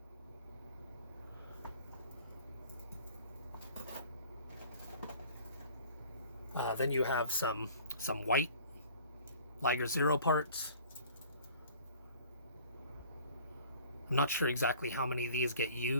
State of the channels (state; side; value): inverted; both; correlation -0.49